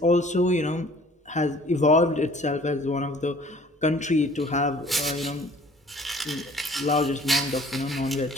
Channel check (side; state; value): both; normal; correlation 0.52